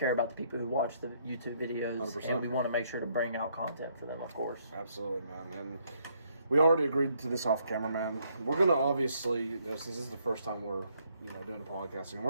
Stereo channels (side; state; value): both; inverted; correlation -0.70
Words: about the people who watch the YouTube videos, 100%. and we want to make sure to bring out content for them, of course. Absolutely, man. And we already agreed to this off camera, man. We're gonna obviously, since this is the first time we're, doing a podcasting,